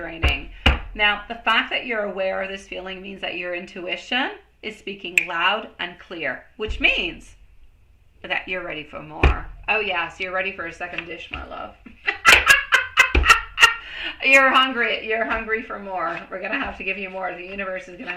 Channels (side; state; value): both; identical; correlation 1.00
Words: Now, the fact that you're aware of this feeling means that your intuition is speaking loud and clear, which means that you're ready for more. Oh yes, you're ready for a second dish, my love. You're hungry for more. We're going to have to give you more. The universe is going to